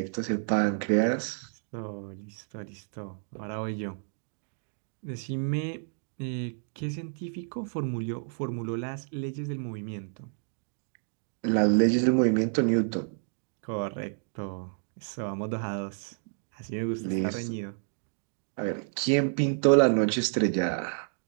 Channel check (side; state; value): left; silent; digital silence